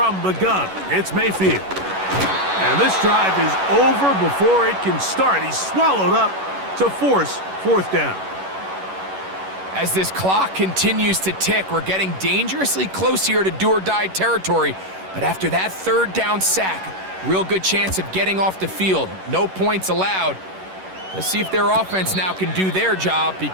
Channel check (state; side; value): late; left; 11 ms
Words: the gun, it's Mayfield. And this drive is over before it can start. He's swallowed up to force fourth down. As this clock continues to tick, we're getting dangerously close here to do-or-die territory. But after that third down sack, real good chance of getting off the field. No points allowed. Let's see if their offense now can do their job,